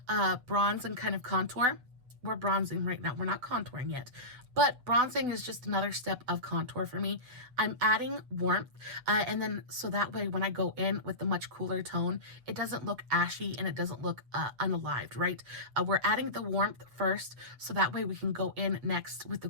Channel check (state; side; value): late; left; 8.0 ms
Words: bronze and kind of contour, we're bronzing right now, we're not contouring yet, but bronzing is just another step of contour for me. I'm adding warmth, and then so that way when I go in with the much cooler tone, it doesn't look ashy and it doesn't look unalived, right? We're adding the warmth first, so that way we can go in next with the